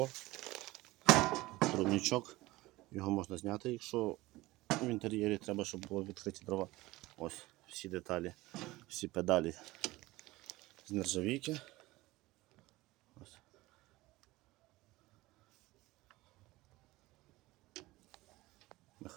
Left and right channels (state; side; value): quieter; left; 19.4 dB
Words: трубничок, його можна зняти, якщо в інтер'єрі треба, щоб було відкриті дрова. Ось всі деталі, всі педалі з нержавійки. Ось.